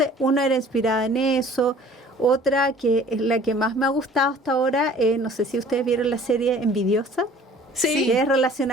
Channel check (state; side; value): normal; both; correlation 0.50